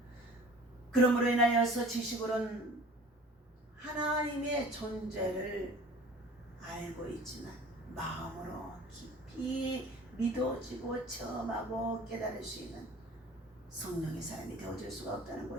그러므로 인하여서 지식으로는 하나님의 존재를 알고 있지만 마음으로 깊이 믿어지고 체험하고 깨달을 수 있는 성령의 사람이 되어줄 수가 없다는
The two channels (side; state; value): both; normal; correlation 0.45